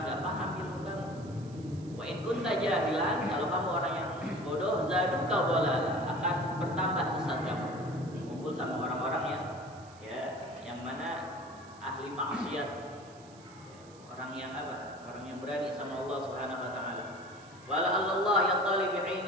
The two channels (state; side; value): noise; right; hiss, 25 dB below the sound